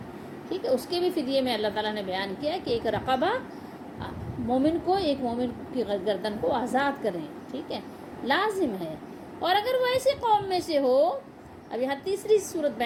ٹھیک ہے۔ اس کے بھی فدیے میں اللہ تعالیٰ نے بیان کیا کہ ایک رقبہ، ایک مومن کی گردن کو آزاد کریں، ٹھیک ہے، لازم ہے۔ اور اگر وہ ایسی قوم میں سے ہو، اب یہاں تیسری صورت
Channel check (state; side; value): identical; both; correlation 1.00